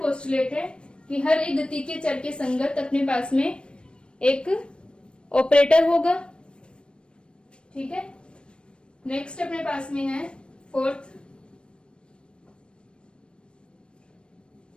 पोस्टुलेट है कि हर एक गति के चर के संगत अपने पास में एक ऑपरेटर होगा। ठीक है, नेक्स्ट अपने पास में है फोर्थ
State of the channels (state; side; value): late; right; 0.056 ms